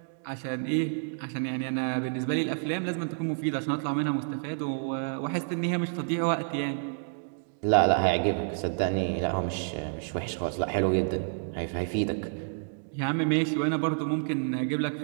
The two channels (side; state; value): left; silent; digital silence